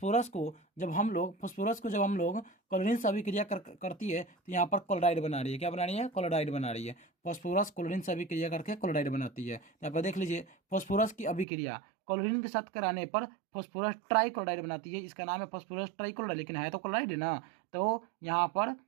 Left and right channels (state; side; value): drops out; left; at 11.5 s